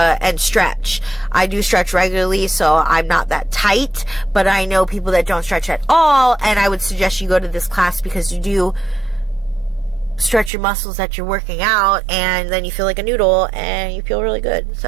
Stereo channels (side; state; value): left; drops out; at 10.5 s